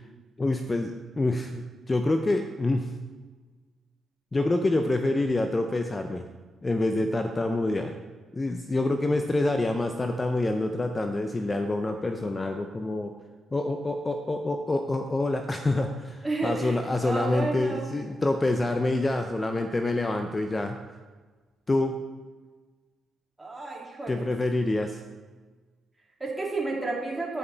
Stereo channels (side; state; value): both; normal; correlation 0.92